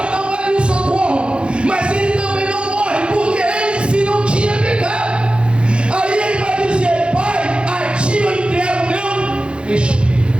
não vai vir socorro. Mas ele também não morre, porque ele em si não tinha pecado. Aí ele vai dizer: Pai, a ti eu entrego o meu espírito.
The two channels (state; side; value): late; left; 0.057 ms